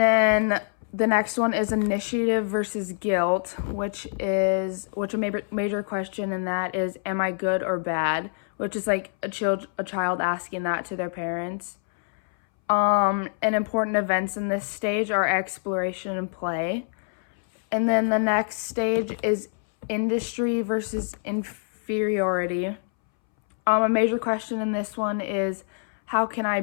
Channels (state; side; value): silent; right; 61 dB below the other